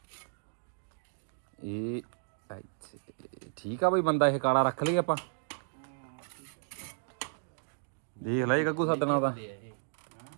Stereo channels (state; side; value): silent; left; digital silence